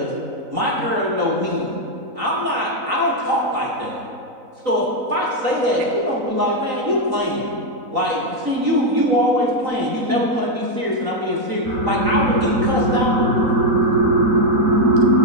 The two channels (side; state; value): left; late; 4.0 ms